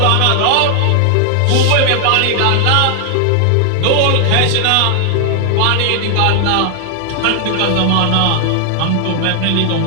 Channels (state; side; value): different; both; correlation 0.00